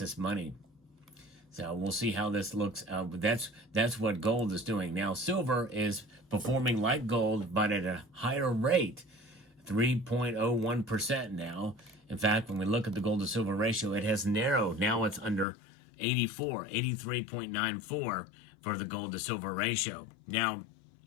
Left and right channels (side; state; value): right; drops out; at 15.5 s